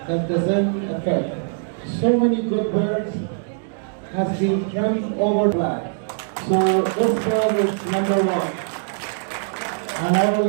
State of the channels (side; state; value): left; silent; digital silence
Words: that doesn't affect. So many good birds has been trimmed over black. So this bird is number one. And I will